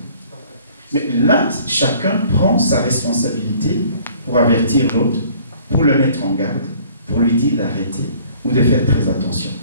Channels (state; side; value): inverted; both; correlation -0.55